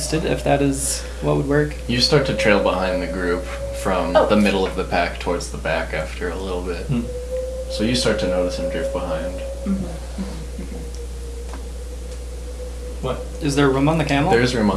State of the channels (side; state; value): both; identical; correlation 1.00